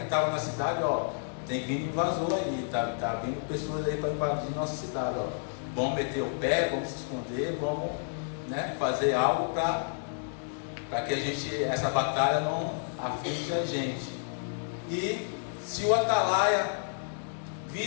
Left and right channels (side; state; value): right; silent; digital silence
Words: estava na cidade, ó, tem vindo invasor aí, tá vindo pessoas aí para invadir nossa cidade, ó. Vamos meter o pé, vamos se esconder, vamos, né, fazer algo para que essa batalha não aflige a gente. E se o atalaia